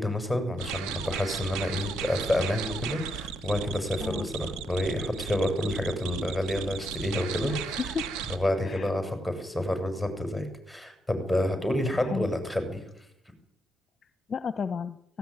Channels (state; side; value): normal; both; correlation 0.80